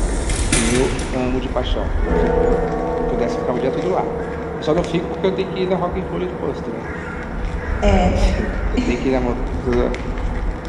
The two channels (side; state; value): both; identical; correlation 1.00